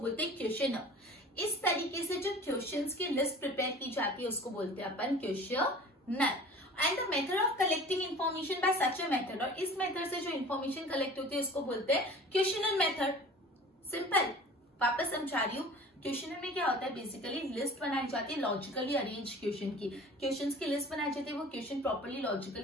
हैं क्वेश्चनर। इस तरीके से जो क्वेश्चंस की लिस्ट प्रिपेयर की जाती है उसको बोलते हैं अपन questionnaire. And the method of collecting information by such a method, और इस मेथड से जो इन्फॉर्मेशन कलेक्ट होती है उसको बोलते हैं क्वेश्चनर मेथड। सिंपल, वापस समझा रही हूँ। क्वेश्चनर में क्या होता है, बेसिकली लिस्ट बनाई जाती है लॉजिकली अरेंज क्वेश्चन की, क्वेश्चंस की लिस्ट बनाई जाती है, वो क्वेश्चन प्रॉपर्ली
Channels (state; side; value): normal; both; correlation 0.43